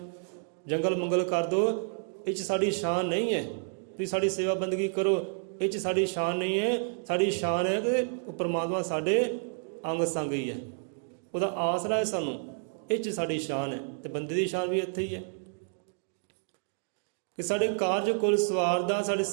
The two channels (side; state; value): left; silent; 58 dB below the other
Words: ਜੰਗਲ ਮੰਗਲ ਕਰ ਦਿਓ, ਇਹ 'ਚ ਸਾਡੀ ਸ਼ਾਨ ਨਹੀਂ ਹੈ। ਤੁਸੀਂ ਸਾਡੀ ਸੇਵਾ ਬੰਦਗੀ ਕਰੋ, ਇਹ 'ਚ ਸਾਡੀ ਸ਼ਾਨ ਨਹੀਂ ਹੈ। ਸਾਡੀ ਸ਼ਾਨ ਹੈ ਕਿ ਉਹ ਪਰਮਾਤਮਾ ਸਾਡੇ ਅੰਗ ਸੰਗ ਹੀ ਹੈ, ਉਹਦਾ ਆਸਰਾ ਹੈ ਸਾਨੂੰ, ਇਹ 'ਚ ਸਾਡੀ ਸ਼ਾਨ ਹੈ। ਤੇ ਬੰਦੇ ਦੀ ਸ਼ਾਨ ਵੀ ਇੱਥੇ ਹੀ ਹੈ ਕਿ ਸਾਡੇ ਕਾਰਜ ਕੁਲ ਸਵਾਰਦਾ, ਸਾਡੇ